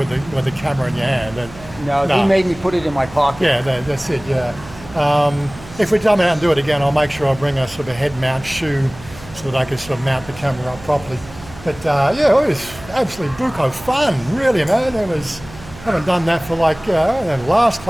the camera in your hand. And, no, he made me put it in my pocket. Yeah, that's it, yeah. If we come out and do it again, I'll make sure I bring a sort of a head mount shoe so that I can sort of mount the camera up properly. But yeah, it was absolutely buco fun, really, man. I haven't done that for like, the last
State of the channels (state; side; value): noise; right; hum, 18 dB below the sound